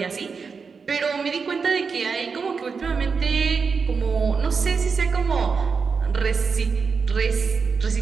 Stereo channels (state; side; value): quieter; left; 5.3 dB